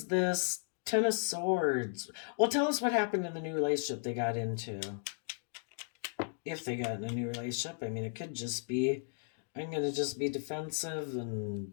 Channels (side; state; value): right; silent; 54 dB below the other